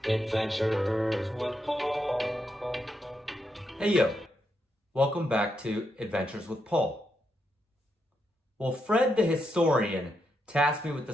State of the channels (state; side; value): normal; both; correlation 0.82